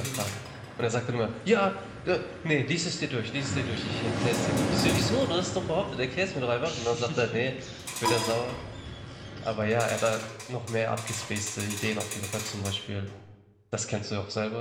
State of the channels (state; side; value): identical; both; correlation 1.00